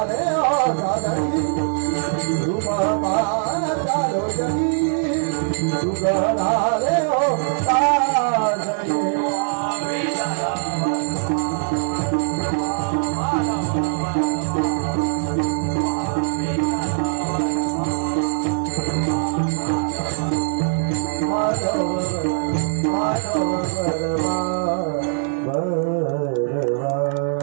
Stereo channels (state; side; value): silent; left; digital silence